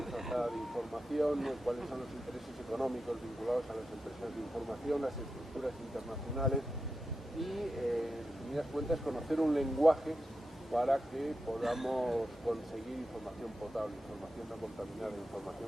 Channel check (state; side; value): normal; both; correlation 0.89